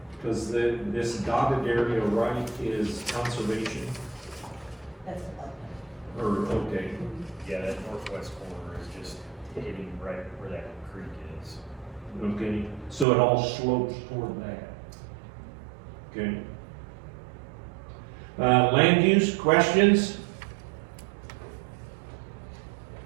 Because this dotted area right is conservation, That's or, okay, Yeah, that northwest corner is just hitting right where that creek is. okay, so it all slopes toward that. Okay. Land use, questions?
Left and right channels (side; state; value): left; drops out; at 13.1 s